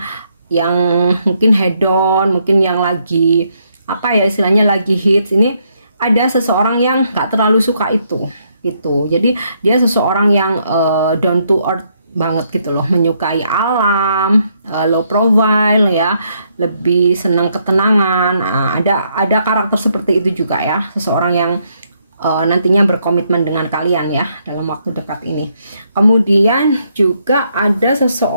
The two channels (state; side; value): inverted; both; correlation -0.74